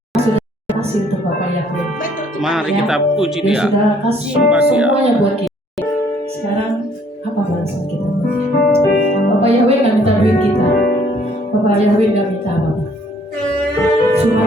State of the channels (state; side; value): normal; both; correlation 0.62